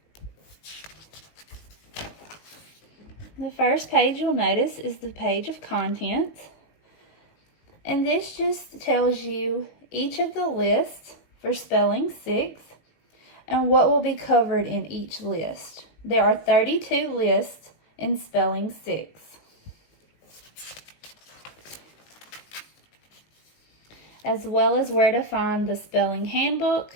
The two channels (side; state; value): right; late; 19 ms